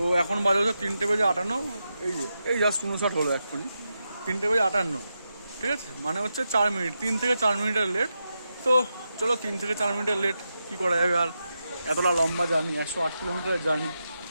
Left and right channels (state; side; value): inverted; both; correlation -0.88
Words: এখন বাজে হচ্ছে 3:58। এই জাস্ট 59 হলো এক্ষুনি, 3:58, ঠিক আছে। মানে হচ্ছে 4 মিনিট, 3 থেকে 4 মিনিটের লেট। তো চলো 3 থেকে 4 মিনিটের লেট কী করা যাবে আর, এতটা লম্বা জার্নি, 108 কিলোমিটারের জার্নি,